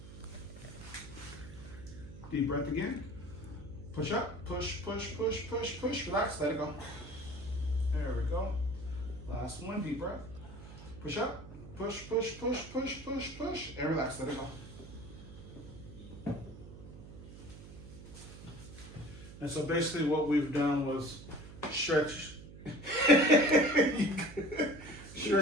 Deep breath again. Push up, push, push, push, push, push. Relax, let it go. There we go. Last one, deep breath. Push up, push, push, push, push, push, push, and relax, let it go. And so basically what we've done was stretch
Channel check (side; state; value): right; noise; hum, 15 dB below the sound